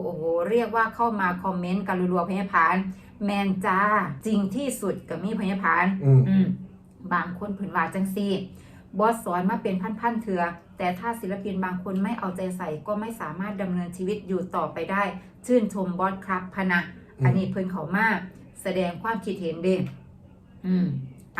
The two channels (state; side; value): identical; both; correlation 1.00